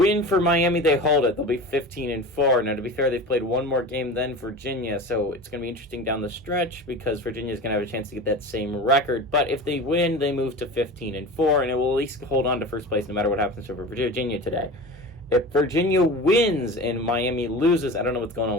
for Miami, they hold it. They'll be 15-4. Now, to be fair, they've played one more game than Virginia, so it's going to be interesting down the stretch because Virginia's going to have a chance to get that same record. But if they win, they move to 15-4, and it will at least hold on to first place no matter what happens for Virginia today. If Virginia wins and Miami loses, I don't know what's going on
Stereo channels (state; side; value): normal; both; correlation 0.32